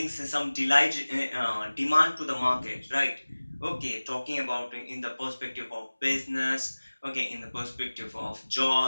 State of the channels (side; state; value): both; inverted; correlation -1.00